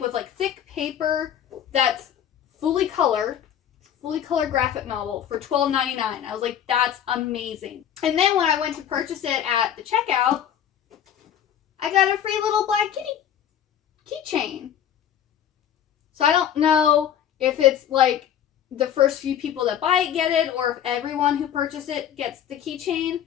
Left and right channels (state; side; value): quieter; right; 9.8 dB